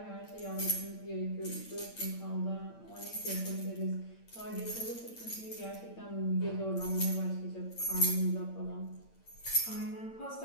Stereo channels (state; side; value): late; right; 8.8 ms